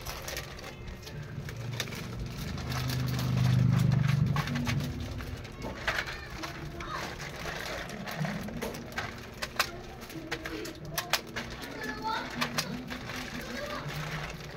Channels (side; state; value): both; identical; correlation 1.00